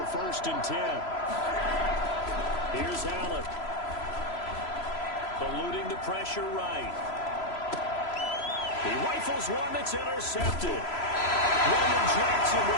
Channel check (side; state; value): right; late; 3.0 ms